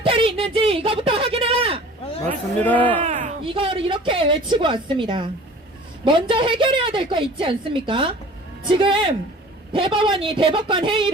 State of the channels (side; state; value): both; normal; correlation 0.45